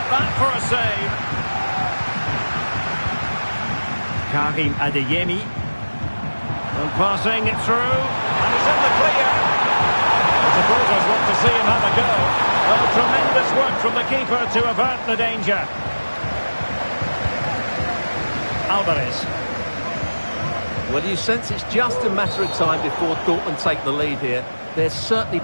that for a save? Karim Adeyemi. And passing it through, and he's in the clear. The supporters want to see him have a go. Well, tremendous work from the keeper to avert the danger. Alvarez. Well, you sense it's just a matter of time before Dortmund take the lead here. They're certainly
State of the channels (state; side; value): inverted; both; correlation -1.00